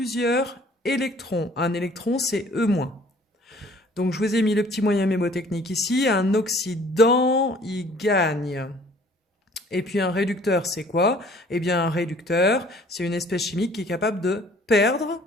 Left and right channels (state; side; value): normal; both; correlation 0.54